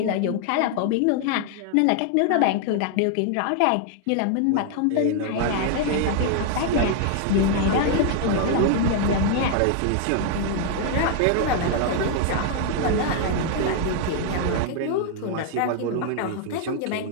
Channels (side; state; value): both; different; correlation 0.00